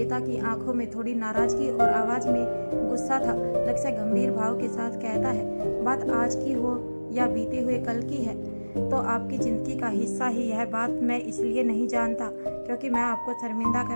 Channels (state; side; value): inverted; both; correlation -1.00